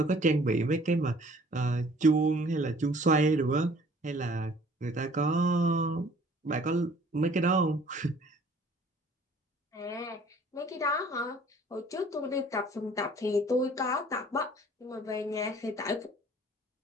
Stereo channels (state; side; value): normal; both; correlation 0.54